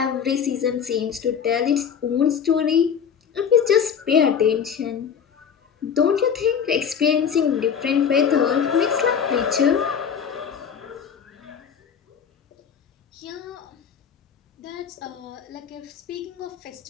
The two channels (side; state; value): right; quieter; 7.4 dB